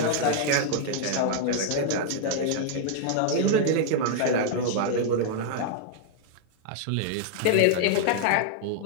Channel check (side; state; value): both; different; correlation -0.01